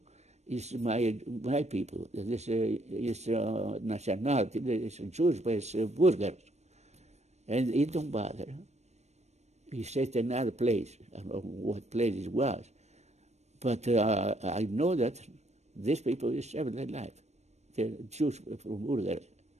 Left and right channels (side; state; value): left; late; 0.32 ms